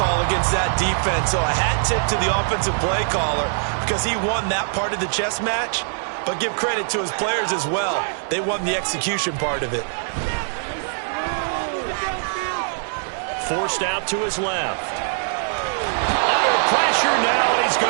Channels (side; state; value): left; silent; 62 dB below the other